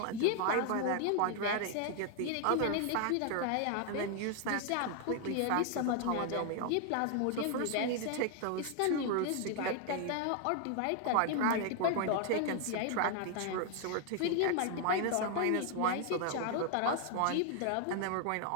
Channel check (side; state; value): both; different; correlation 0.00